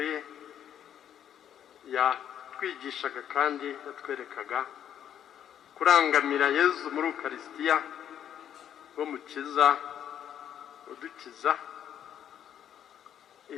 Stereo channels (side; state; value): right; quieter; 9.8 dB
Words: ye yatwigishaga kandi yatwerekaga kurangamira Yezu muri Ukaristiya, wo mukiza udukiza.